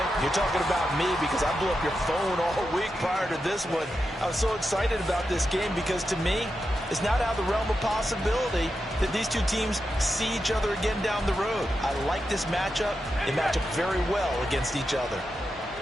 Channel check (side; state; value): both; normal; correlation 0.88